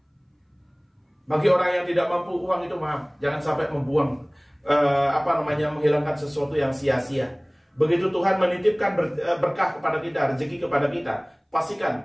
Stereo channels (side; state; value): both; identical; correlation 1.00